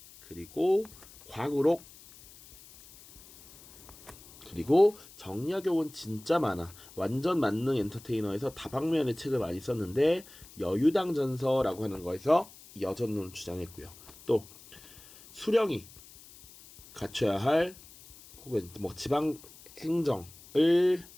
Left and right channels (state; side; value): noise; left; hiss, 21 dB below the sound